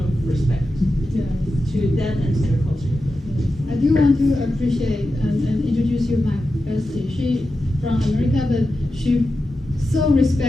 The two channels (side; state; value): both; normal; correlation 0.91